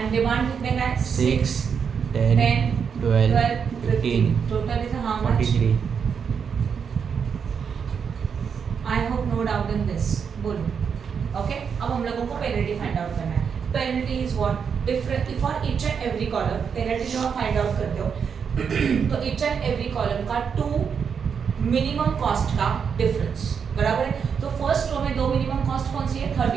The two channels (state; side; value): quieter; left; 6.7 dB